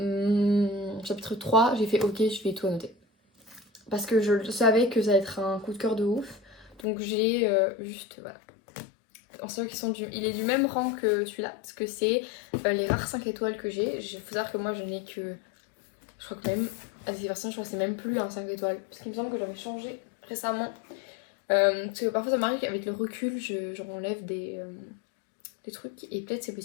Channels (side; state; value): right; drops out; at 6.9 s